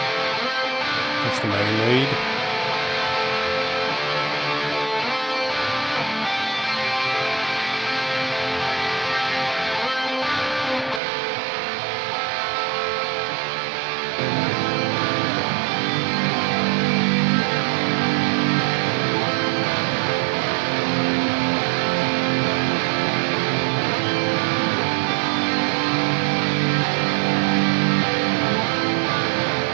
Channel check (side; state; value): left; drops out; at 11.0 s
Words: That's the main lead.